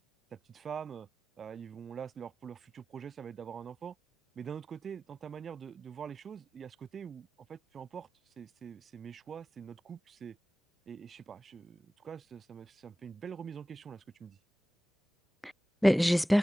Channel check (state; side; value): normal; both; correlation 0.97